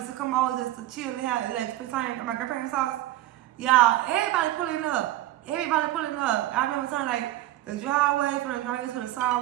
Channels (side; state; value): left; quieter; 14.9 dB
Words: to come over just to chill and have like spend time at my grandparents' house. Y'all, everybody pulling up. I remember time like the driveway from the driveway to the